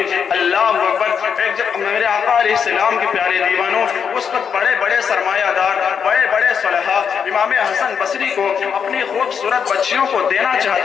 अल्लाह अकबर। एक जब मेरे आका अलैहिस्सलाम के प्यारे दीवानों, उस वक्त बड़े सरमायादार, बड़े सलहा इमाम हसन बसरी को अपनी खूबसूरत बच्चियों को देना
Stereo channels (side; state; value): right; quieter; 7.0 dB